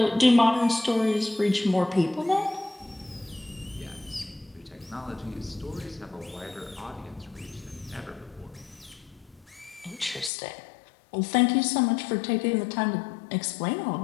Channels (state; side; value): drops out; right; at 10.3 s